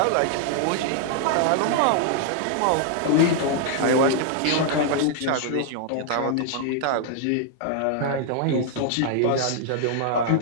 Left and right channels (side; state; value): both; different; correlation -0.01